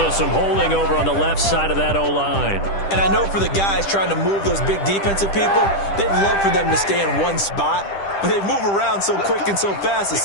some holding over on the left side of that O-line. And I know for the guys trying to move those big defensive people, they'd love for them to stay in one spot, but they move around so quick and so fast that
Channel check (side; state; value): right; late; 10 ms